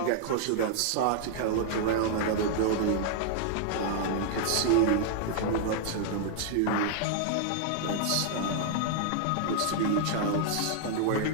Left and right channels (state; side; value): different; both; correlation 0.00